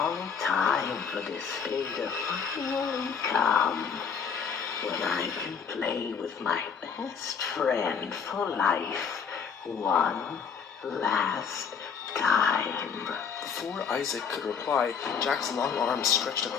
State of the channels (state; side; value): quieter; right; 6.6 dB